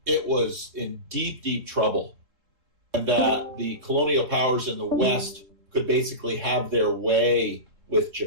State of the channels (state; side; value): late; left; 3.7 ms